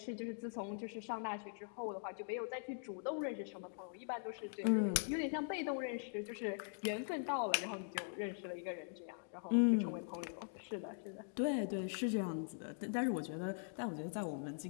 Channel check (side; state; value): right; silent; digital silence